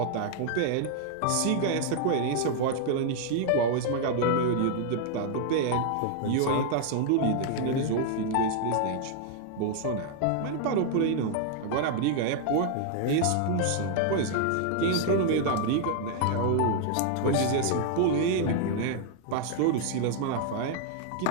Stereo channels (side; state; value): both; different; correlation 0.00